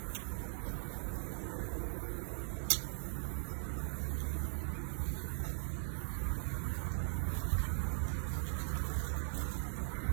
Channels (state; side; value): silent; left; digital silence